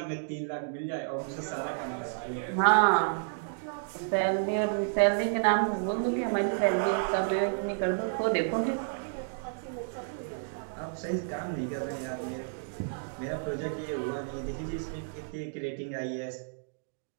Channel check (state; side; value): silent; left; digital silence